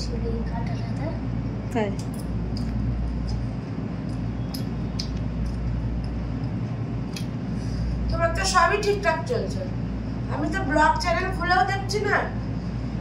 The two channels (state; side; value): identical; both; correlation 1.00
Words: শুলে এই কাঁটাটাতে। হ্যাঁ, তোমার তো সবই ঠিকঠাক চলছে। আমি তো ব্লগ চ্যানেল খুলেও দেখছি না,